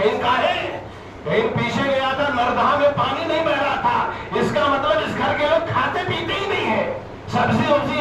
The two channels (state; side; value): identical; both; correlation 1.00